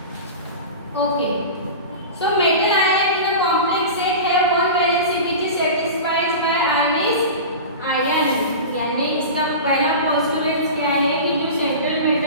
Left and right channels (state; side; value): inverted; both; correlation -0.30